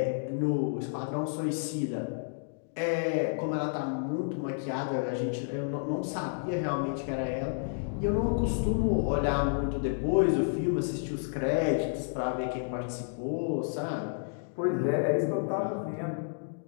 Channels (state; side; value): silent; right; digital silence